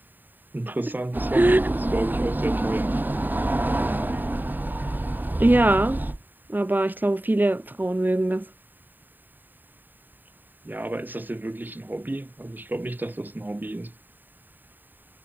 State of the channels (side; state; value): left; late; 0.090 ms